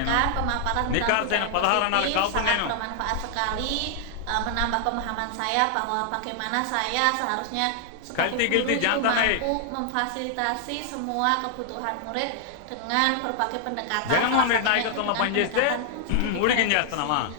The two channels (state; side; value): different; both; correlation 0.00